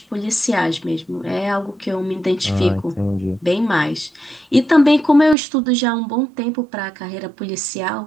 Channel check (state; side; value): drops out; left; at 5.4 s